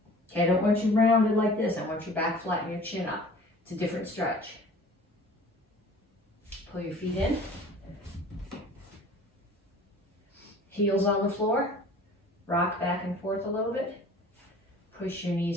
Okay, I don't want you rounded like this. I want your back flat and your chin up. It's a different stretch. Pull your feet in. Heels on the floor. Rock back and forth a little bit. Push your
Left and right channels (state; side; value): normal; both; correlation 0.46